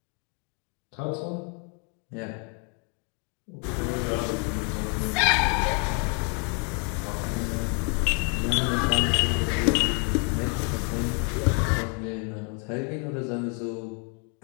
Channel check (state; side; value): quieter; right; 36.1 dB